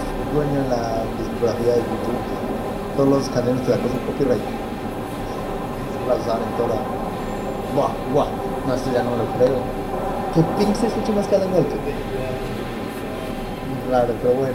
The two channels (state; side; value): identical; both; correlation 1.00